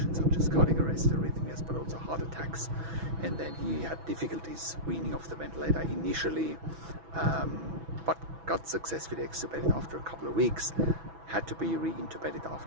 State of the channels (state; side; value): late; left; 6.1 ms